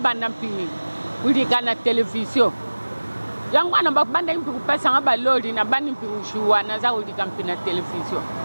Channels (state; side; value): inverted; both; correlation -1.00